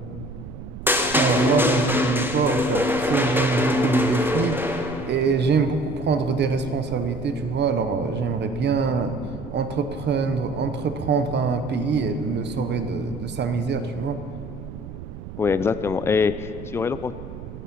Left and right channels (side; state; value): right; noise; rumble, 12 dB below the sound